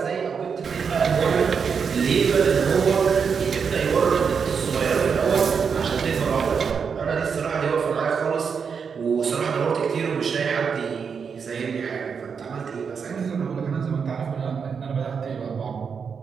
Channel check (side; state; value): left; quieter; 6.2 dB